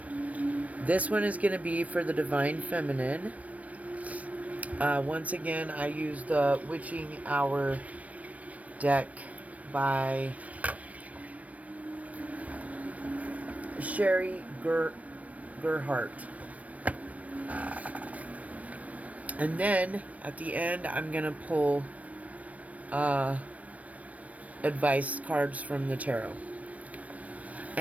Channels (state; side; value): late; left; 0.068 ms